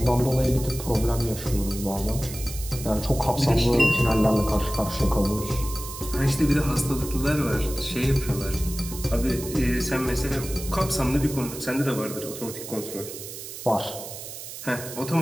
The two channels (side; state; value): right; noise; hiss, 11 dB below the sound